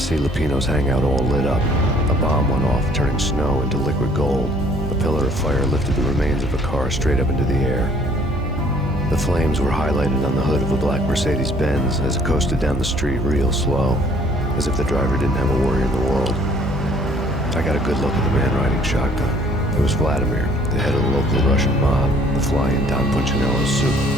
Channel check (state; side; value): normal; both; correlation 0.59